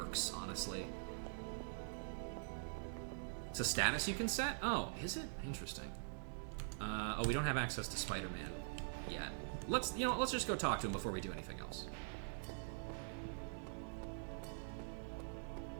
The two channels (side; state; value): left; silent; digital silence